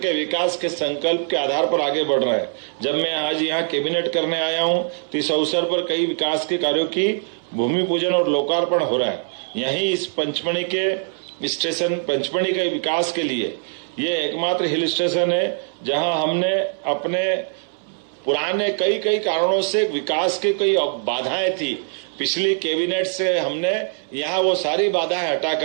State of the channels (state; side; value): silent; left; 64 dB below the other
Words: विकास के संकल्प के आधार पर आगे बढ़ रहे हैं। जब मैं आज यहाँ कैबिनेट करने आया हूँ तो इस अवसर पर कई विकास के कार्यों की भूमि पूजन और लोकार्पण हो रहा है। यहीं इस पंचमढ़ी के स्टेशन पंचमढ़ी के विकास के लिए ये एकमात्र हिल स्टेशन है जहाँ हमने अपने पुराने कई कारणों से विकास की कई बाधाएं थी, पिछली कैबिनेट से हमने यहाँ वो सारी बाधाएं हटा